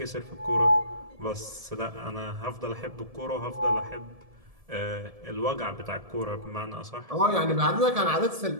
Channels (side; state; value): left; late; 1.7 ms